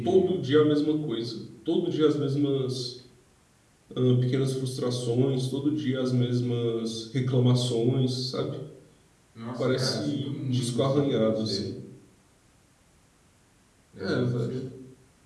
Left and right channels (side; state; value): both; identical; correlation 1.00